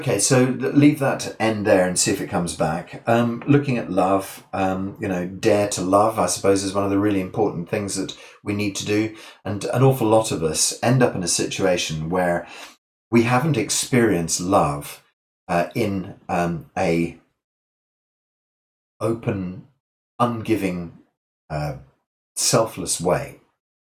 so leave that end there and see if it comes back. Looking at love, dare to love, I suppose, is one of the really important things that we need to do. And an awful lot of us end up in a situation where we haven't experienced love in a open, ungiving, selfless way.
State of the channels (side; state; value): both; identical; correlation 1.00